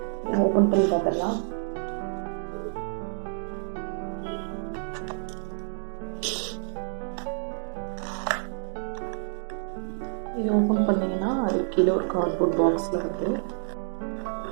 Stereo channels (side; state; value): left; silent; digital silence